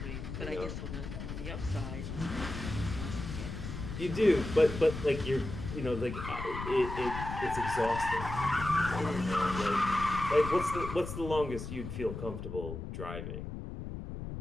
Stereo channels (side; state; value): left; noise; rumble, 7 dB below the sound